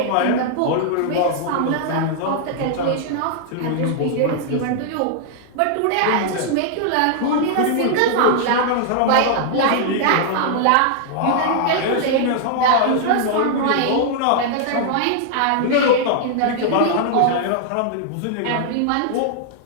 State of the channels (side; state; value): both; different; correlation -0.01